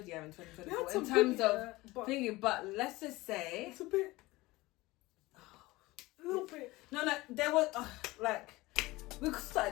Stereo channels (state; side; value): quieter; right; 20.3 dB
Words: year in 2024 in terms of thinking. But let's just say it's a bit. A little bit. No, there was we